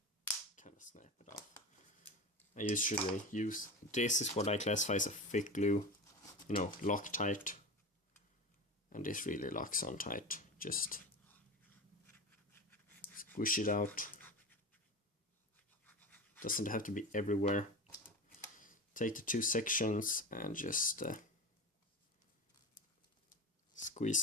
kind of snap it off. I usually use, this is what I classify as a thick glue, you know, Loctite. And this really locks on tight. Just squish it out. Doesn't have to be everywhere. Take the 2 sections and just squeeze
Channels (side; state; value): both; normal; correlation 0.26